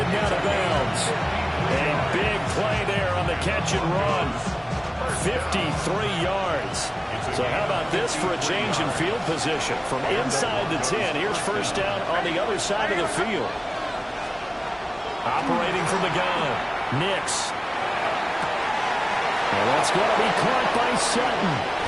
out of bounds. A big play there on the catch and run. 53 yards. So how about this for a change in field position? From inside the 10, here's first down on the other side of the field. Operating from the gun. Nix. And that's going to be caught by Sutton.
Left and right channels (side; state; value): both; identical; correlation 1.00